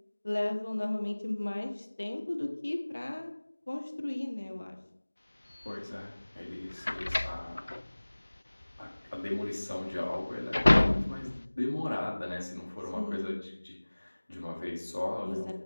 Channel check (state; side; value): inverted; both; correlation -1.00